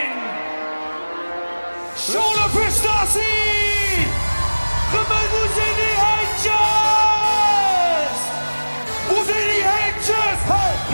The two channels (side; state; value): both; inverted; correlation -1.00